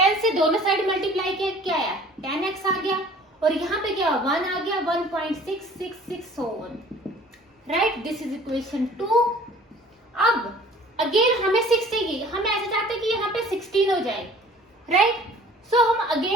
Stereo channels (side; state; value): both; normal; correlation 0.50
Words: से दोनों साइड मल्टीप्लाई किया, क्या आया, 10x आ गया, और यहाँ पे क्या 1 आ गया, 1.666 so on, right. This is equation 2। अब अगेन हमें 6 चाहिए, हम ऐसे चाहते हैं कि यहाँ पे 16 हो जाए, राइट। सो हम